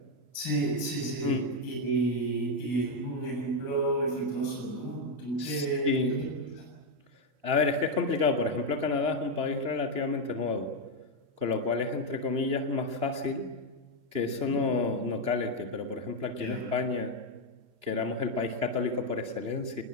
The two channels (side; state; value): left; late; 2.9 ms